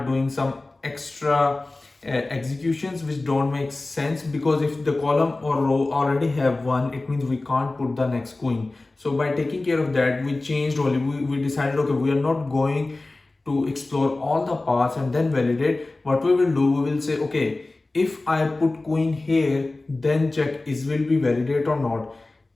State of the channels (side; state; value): right; quieter; 3.1 dB